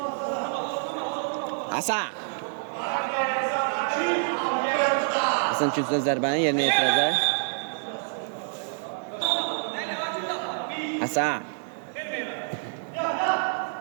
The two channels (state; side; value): silent; left; 60 dB below the other